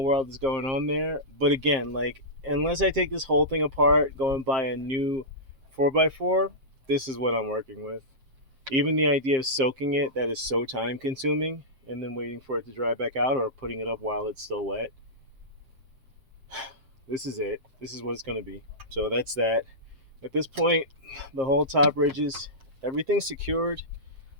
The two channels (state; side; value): late; left; 7.5 ms